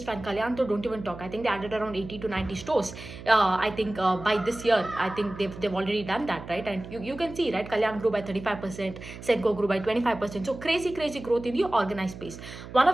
fine. Kalyan, so don't even talk. I think they added around 80 to 90 stores. I think by this year, I think they've already done that, right? And you can see, right? Kalyan grew by 35%, Senco grew by 25%. So crazy growth in the organized space. One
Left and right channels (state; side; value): noise; right; hum, 13 dB below the sound